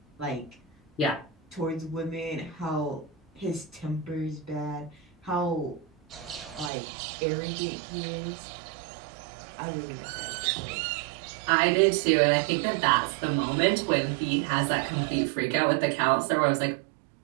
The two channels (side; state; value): left; drops out; at 6.7 s